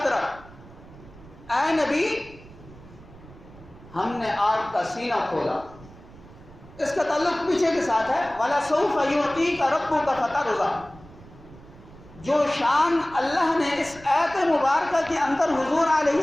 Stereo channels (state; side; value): noise; right; rumble, 20 dB below the sound